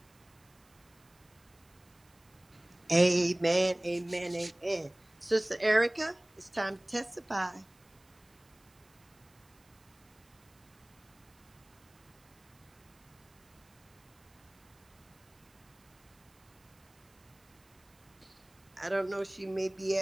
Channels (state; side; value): noise; right; hiss, 30 dB below the sound